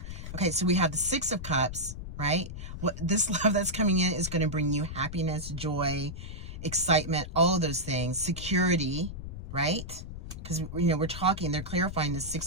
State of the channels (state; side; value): noise; left; rumble, 9 dB below the sound